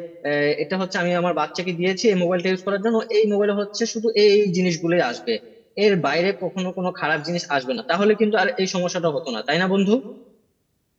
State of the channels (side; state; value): both; identical; correlation 1.00